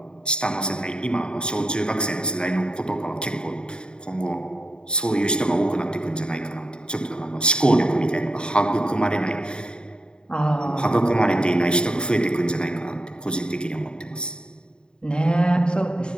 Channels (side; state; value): right; late; 0.049 ms